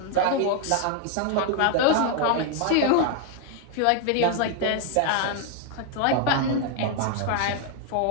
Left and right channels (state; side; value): different; both; correlation 0.00